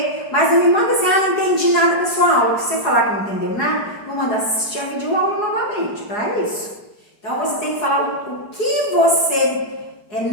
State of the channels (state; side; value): late; right; 4.8 ms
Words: Mas não me manda assim, não entendi nada da sua aula. Se você falar que não entendeu nada, vou mandar assistir a videoaula novamente, para isso. Então, você tem que falar o que você